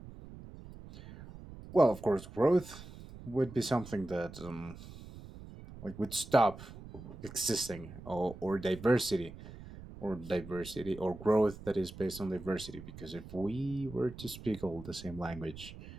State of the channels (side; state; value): right; noise; rumble, 15 dB below the sound